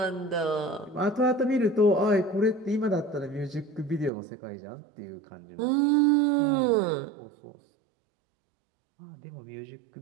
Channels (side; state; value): left; drops out; at 4.1 s